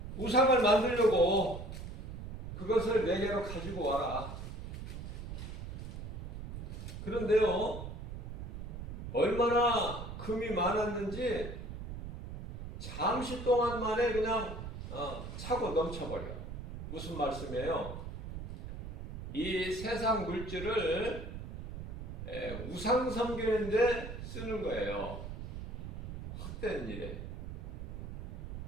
우상을 만들려고 그것을 내게로 가지고 와라. 그런데요, 얼마나 금이 많았는지 잠시 동안 만에 그냥 차고 넘쳐버려. 무슨 말씀이에요? 이 세상 물질을 우상 섬기는데 쓰는 거예요. 헛된 일에.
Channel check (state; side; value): noise; right; rumble, 8 dB below the sound